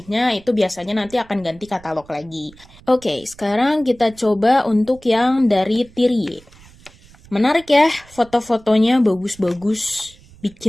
itu biasanya nanti akan ganti katalog lagi. Oke, sekarang kita coba untuk yang dari Tirie. Menarik ya, foto-fotonya bagus-bagus,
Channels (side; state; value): right; noise; rumble, 25 dB below the sound